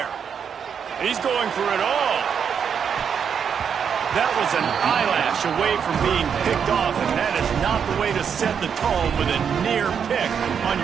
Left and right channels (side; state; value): left; quieter; 7.3 dB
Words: He's going for it all. That was an eyelash away from being picked off, and that is not the way to set the tone with a near pick on